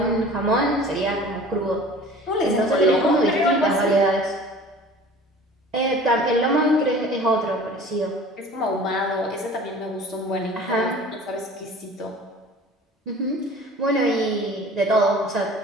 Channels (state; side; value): normal; both; correlation 0.44